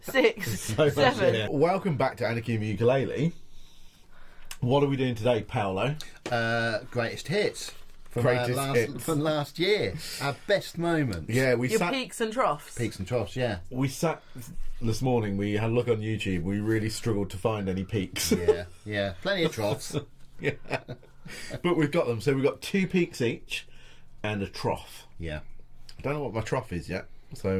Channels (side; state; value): both; identical; correlation 1.00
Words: 6, So 7. Welcome back to Anarchy in the Ukulele. What are we doing today, Paolo? Greatest hits. From Hits. from last year. Our best moments. Yeah, Your peaks and troughs. Peaks and troughs, yeah. We sat this morning, we had a look on YouTube, we really struggled to find any peaks. Yeah. Plenty of troughs. Yeah. But we've got them. So we've got 2 peaks each and a trough. Yeah. I don't know what my trough is yet,